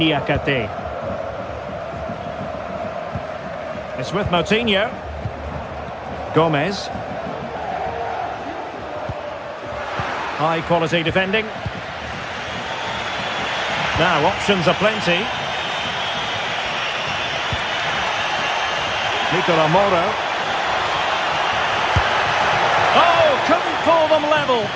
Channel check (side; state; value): both; identical; correlation 1.00